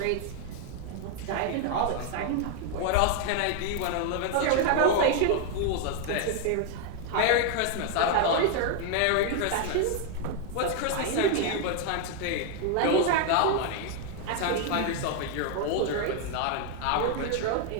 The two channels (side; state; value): both; different; correlation 0.01